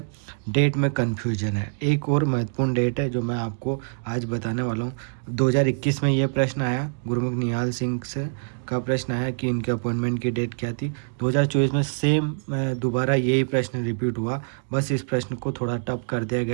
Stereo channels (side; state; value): left; silent; digital silence